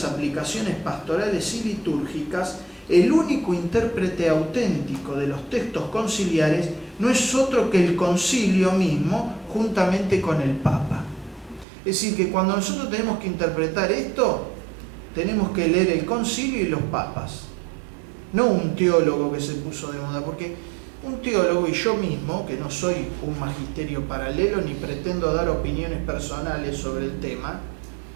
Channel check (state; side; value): drops out; left; at 11.7 s